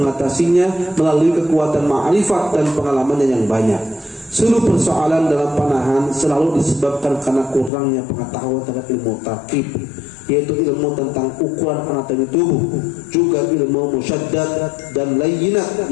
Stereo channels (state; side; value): drops out; right; at 7.7 s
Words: melalui kekuatan ma'rifat dan pengalamannya yang banyak. Seluruh persoalan dalam panahan selalu disebabkan karena kurangnya pengetahuan tentang ilmu tarkib, yaitu ilmu tentang ukuran anatomi tubuh, juga ilmu musyaddad dan layyinat,